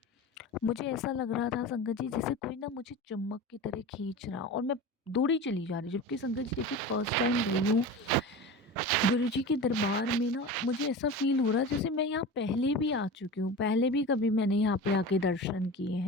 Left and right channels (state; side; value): normal; both; correlation 0.30